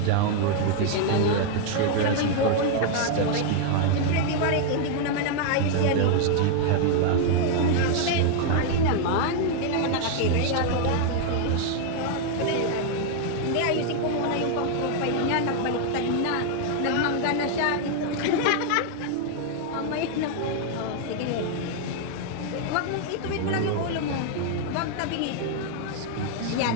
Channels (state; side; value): different; both; correlation 0.00